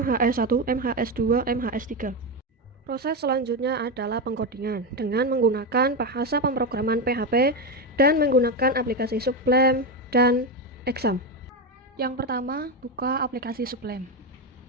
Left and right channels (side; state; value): both; normal; correlation 0.12